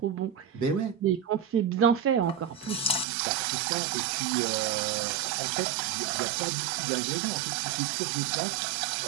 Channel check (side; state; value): left; drops out; at 3.1 s